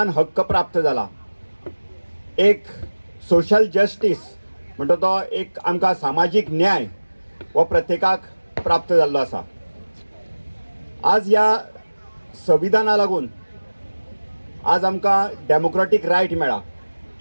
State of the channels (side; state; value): both; inverted; correlation -1.00